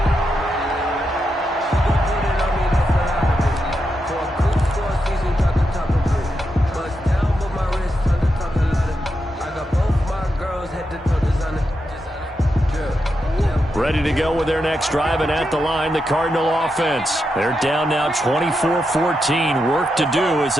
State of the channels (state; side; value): normal; both; correlation 0.85